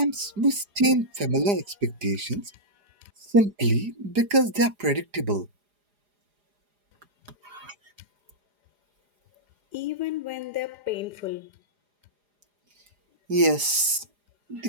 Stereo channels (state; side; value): late; left; 4.9 ms